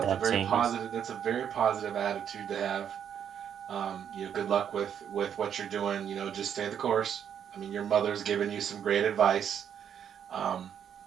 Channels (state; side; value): quieter; left; 8.7 dB